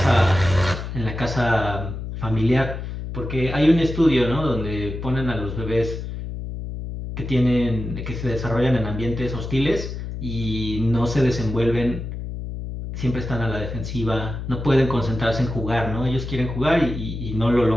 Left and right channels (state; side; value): noise; left; hum, 7 dB below the sound